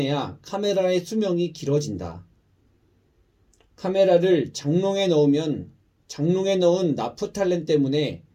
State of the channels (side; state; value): both; identical; correlation 1.00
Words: 카메라의 수명이 길어진다. 카메라를 장롱에 넣으면 장롱에 넣은 나프탈렌 때문에